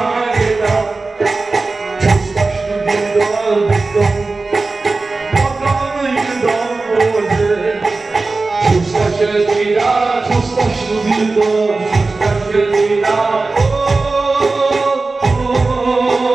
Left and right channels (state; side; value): quieter; left; 3.6 dB